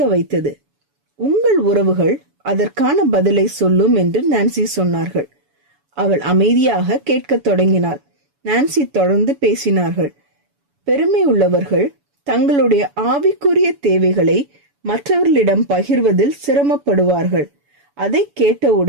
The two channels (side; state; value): left; late; 7.0 ms